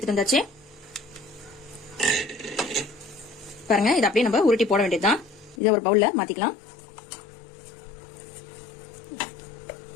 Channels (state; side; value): drops out; right; at 5.6 s